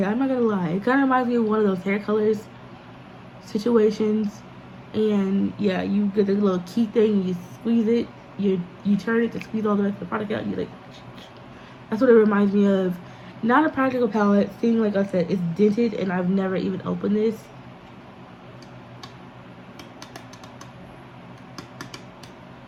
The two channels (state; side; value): identical; both; correlation 1.00